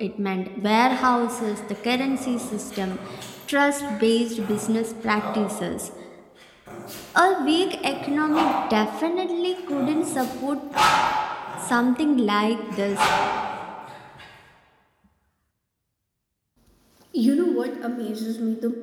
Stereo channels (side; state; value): both; identical; correlation 1.00